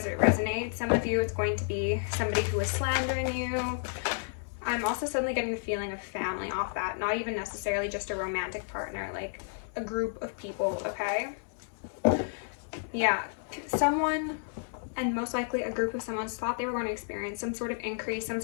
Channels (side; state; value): right; silent; digital silence